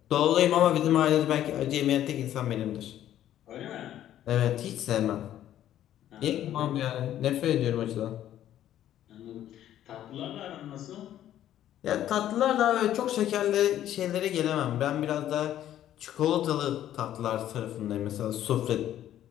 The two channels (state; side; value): quieter; right; 11.9 dB